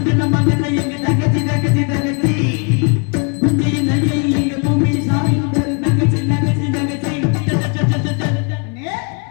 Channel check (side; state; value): right; quieter; 35.7 dB